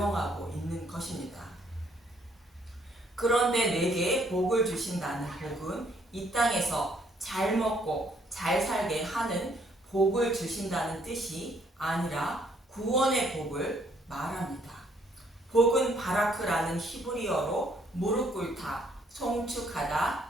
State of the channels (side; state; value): both; normal; correlation 0.67